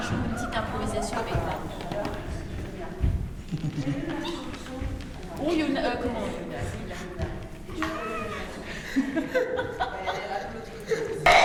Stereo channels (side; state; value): both; identical; correlation 1.00